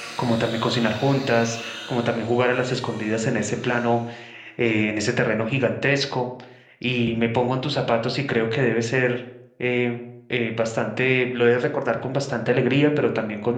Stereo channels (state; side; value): identical; both; correlation 1.00